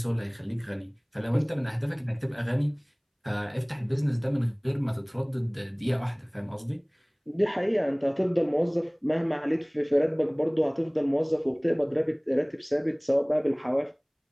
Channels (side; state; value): both; identical; correlation 1.00